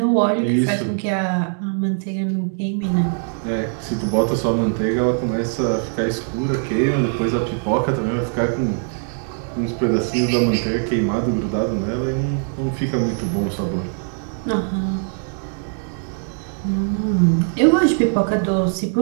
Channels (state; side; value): silent; left; 57 dB below the other